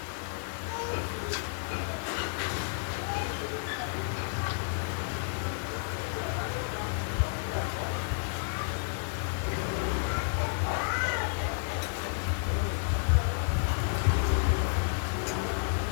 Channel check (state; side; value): silent; right; digital silence